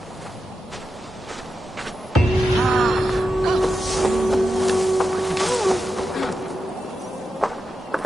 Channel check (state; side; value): normal; both; correlation 0.89